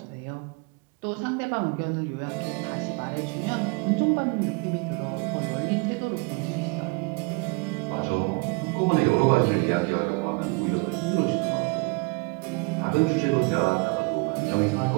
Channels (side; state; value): left; quieter; 29.6 dB